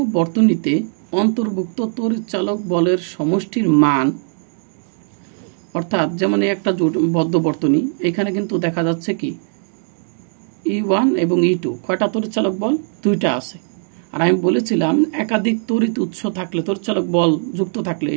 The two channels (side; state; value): left; silent; 56 dB below the other